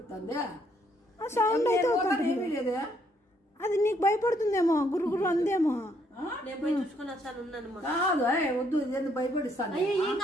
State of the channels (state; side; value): normal; both; correlation 0.70